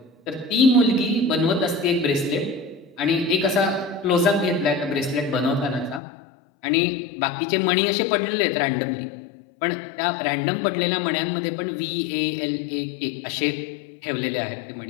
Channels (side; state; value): right; drops out; at 6.0 s